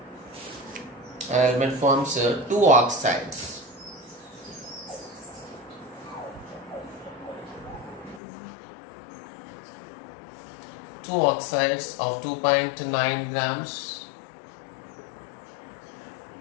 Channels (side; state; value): right; drops out; at 8.2 s